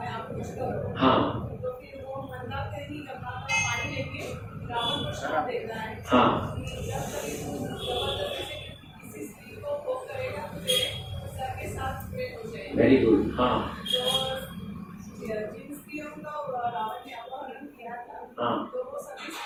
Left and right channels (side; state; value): both; identical; correlation 1.00